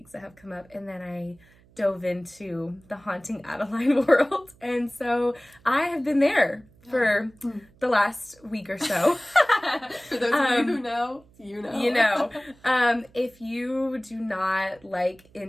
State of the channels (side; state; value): right; noise; hum, 29 dB below the sound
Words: that have come up, and then I dove into the Haunting Adeline world, and so I have been there for the last week or so. For those of you who know, you know. You know. If you do not like